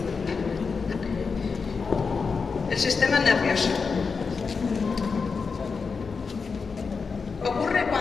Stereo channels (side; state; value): right; quieter; 5.1 dB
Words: El sistema nervioso. Ocurre